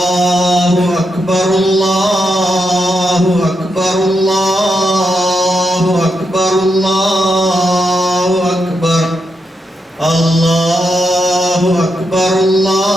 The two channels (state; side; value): normal; both; correlation 0.84